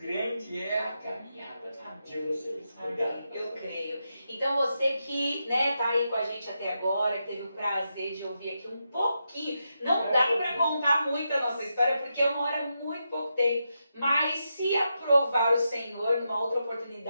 é a caminhada de vocês. Obrigado. Amém. Eu creio. Então você que tá aí com a gente até agora, que teve o prazer de ouvir aqui um pouquinho, não dá para contar muito a nossa história, porque é uma hora muito pouco tempo, mas se aprovar o Senhor, numa outra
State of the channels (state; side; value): inverted; both; correlation -0.86